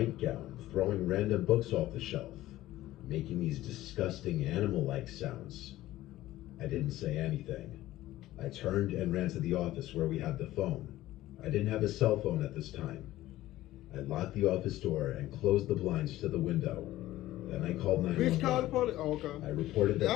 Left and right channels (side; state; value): right; quieter; 15.5 dB